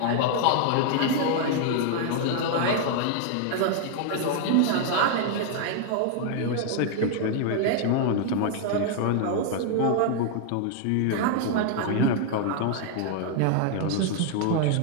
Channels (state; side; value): different; both; correlation 0.00